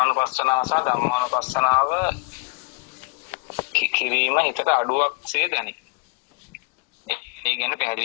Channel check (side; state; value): right; quieter; 30.6 dB